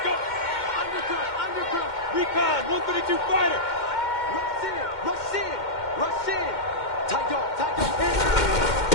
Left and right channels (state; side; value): late; right; 2.1 ms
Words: Recon, 132 fighter. Rush in.